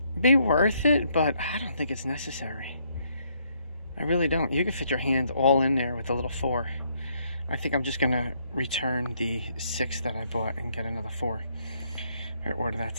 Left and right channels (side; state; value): both; inverted; correlation -0.71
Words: be worth it, but I don't think it's necessary. I really don't. You can fit your hand all in there with the little 4. I think I'm just going to return the 6 that I bought and get another 4. I ordered that